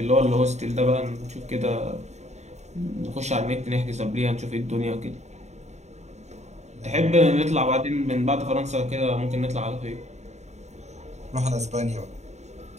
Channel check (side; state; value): left; late; 0.33 ms